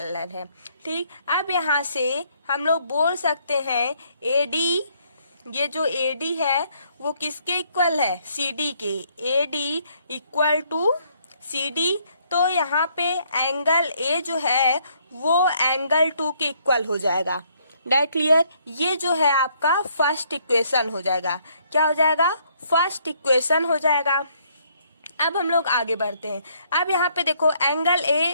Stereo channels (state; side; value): inverted; both; correlation -0.68